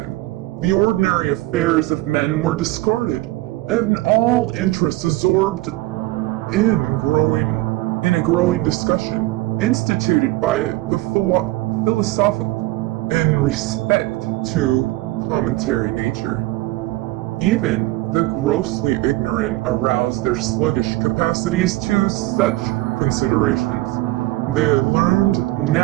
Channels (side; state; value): left; quieter; 18.7 dB